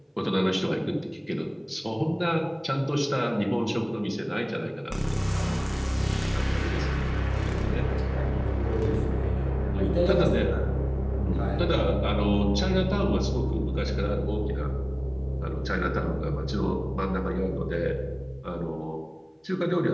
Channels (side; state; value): both; identical; correlation 1.00